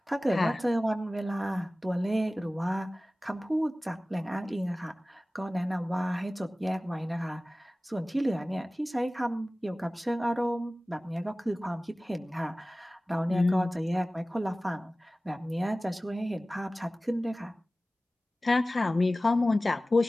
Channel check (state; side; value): normal; both; correlation 0.97